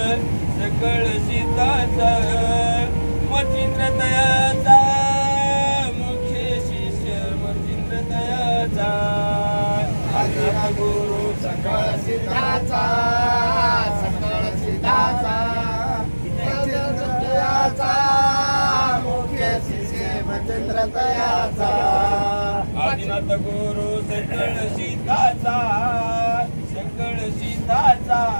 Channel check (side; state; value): both; inverted; correlation -1.00